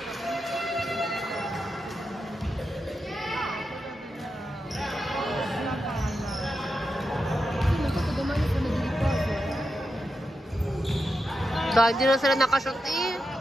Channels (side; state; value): both; normal; correlation 0.88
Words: Dahil hindi na sila nakashoot